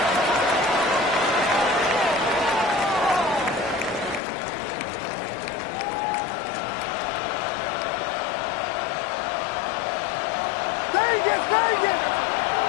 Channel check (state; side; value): drops out; right; at 4.2 s